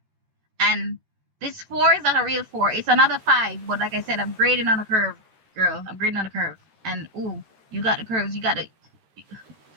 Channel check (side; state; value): left; late; 13 ms